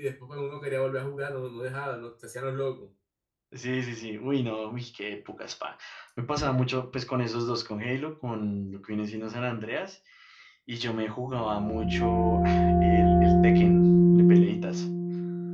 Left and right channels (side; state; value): both; identical; correlation 1.00